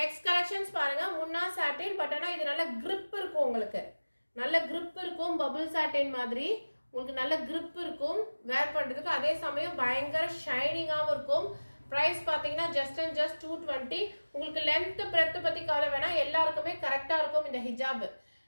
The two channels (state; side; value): inverted; both; correlation -1.00